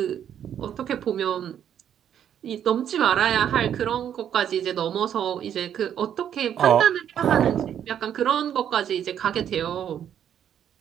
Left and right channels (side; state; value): left; quieter; 9.5 dB